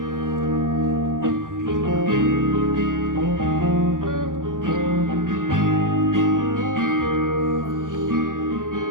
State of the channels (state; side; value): late; left; 0.89 ms